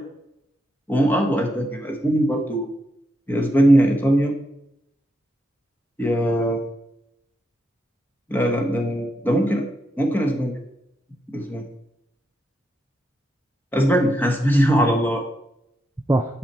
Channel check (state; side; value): normal; both; correlation 0.82